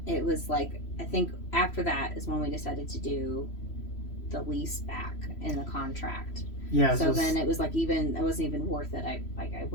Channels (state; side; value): late; right; 3.0 ms